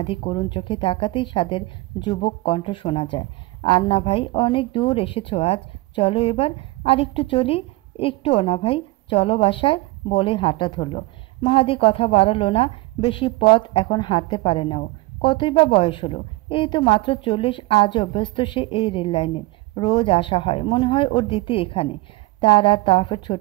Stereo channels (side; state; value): left; quieter; 20.4 dB